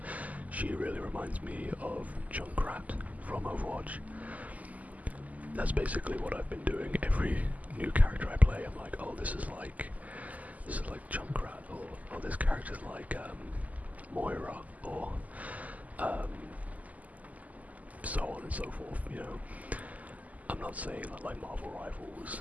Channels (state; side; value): late; left; 0.076 ms